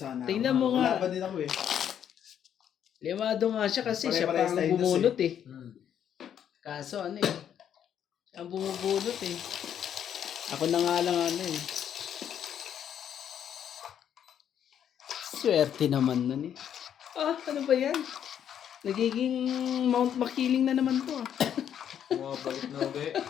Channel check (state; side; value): quieter; right; 9.3 dB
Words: Tingnan mo nga. Lumaban din ako eh. Limado nga siya kasi siya Pare-parehas pang tayo dos bumunot eh. Kaso Kaso ano eh, ang bumubunot eh. Ako na nga lang ano eh. Swerte naman nun eh. Ah, ano ba yan? Nagiging Mount Makiling na naman to ah. bumabalik na ulit.